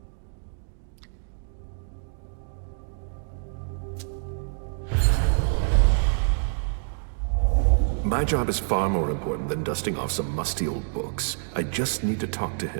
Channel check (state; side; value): silent; left; digital silence